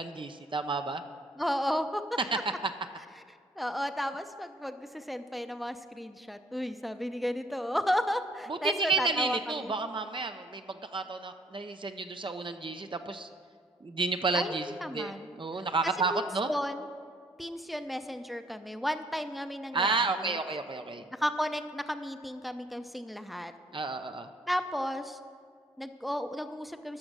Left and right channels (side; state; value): both; normal; correlation 0.64